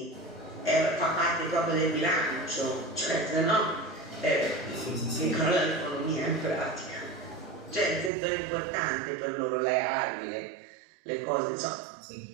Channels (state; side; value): drops out; left; at 8.1 s